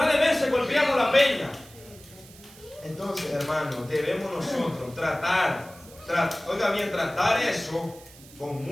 de veces golpeamos la peña. Entonces, hermano, debemos nosotros tratar eso con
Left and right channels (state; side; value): noise; right; hiss, 21 dB below the sound